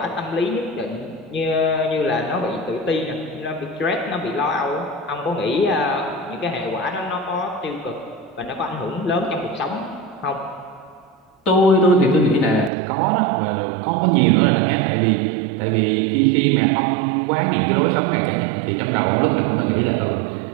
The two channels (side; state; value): left; drops out; at 12.7 s